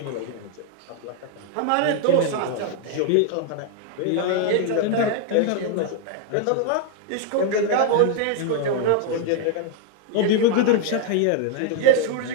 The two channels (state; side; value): different; both; correlation 0.00